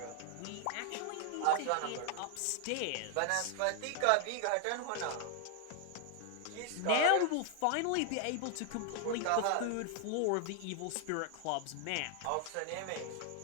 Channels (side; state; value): both; different; correlation 0.00